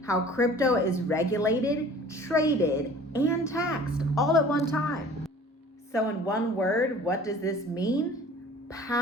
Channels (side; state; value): both; normal; correlation 0.46